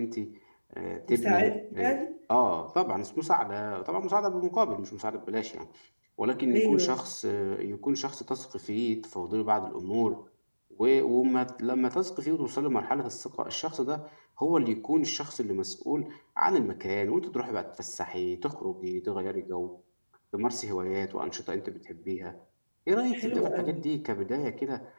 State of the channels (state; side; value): inverted; both; correlation -1.00